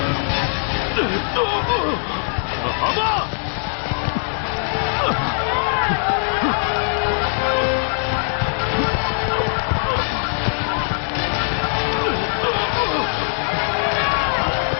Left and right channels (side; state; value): right; silent; 63 dB below the other